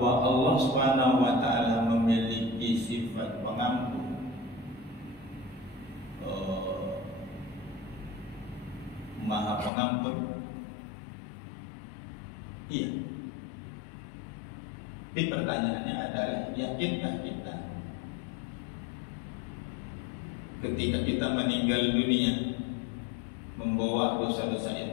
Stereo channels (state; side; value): drops out; right; at 9.7 s